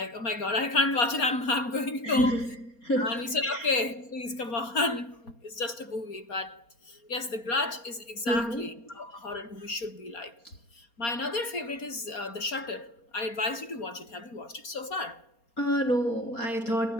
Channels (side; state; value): right; late; 4.3 ms